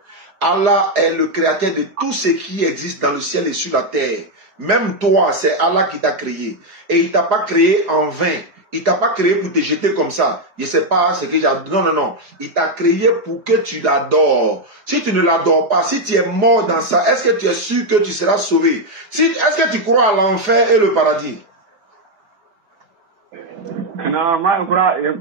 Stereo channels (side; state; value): left; late; 4.8 ms